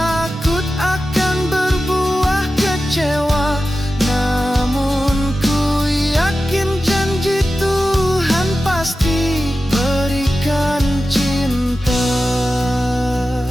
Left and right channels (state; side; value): normal; both; correlation 0.93